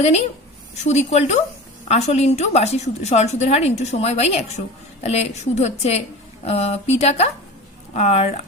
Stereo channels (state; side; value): normal; both; correlation 0.33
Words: জানি সুদ ইকুয়াল টু আসল ইন্টু বার্ষিক সরল সুদের হার ইন্টু সময় বাই 100। তাহলে সুদ হচ্ছে পি টাকা আর